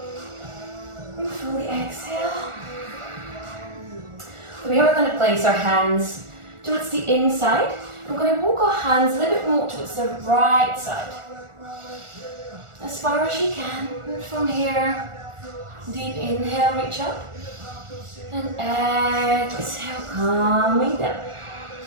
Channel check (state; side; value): late; left; 1.4 ms